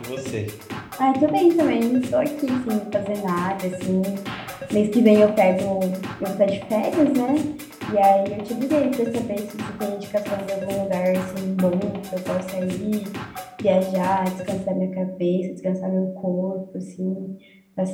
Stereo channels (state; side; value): identical; both; correlation 1.00